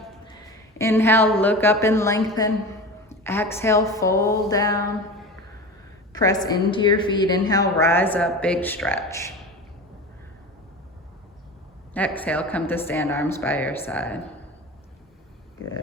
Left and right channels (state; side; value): normal; both; correlation 0.31